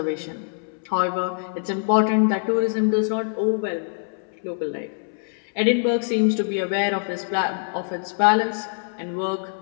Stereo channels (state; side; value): silent; right; 63 dB below the other